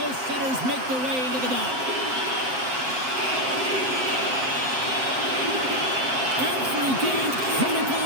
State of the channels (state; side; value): late; left; 7.7 ms